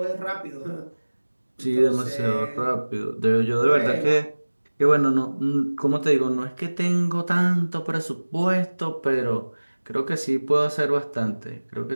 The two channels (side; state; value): both; inverted; correlation -1.00